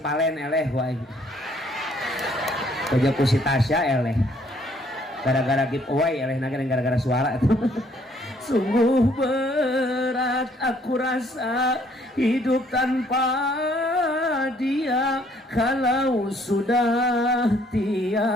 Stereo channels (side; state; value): both; normal; correlation 0.64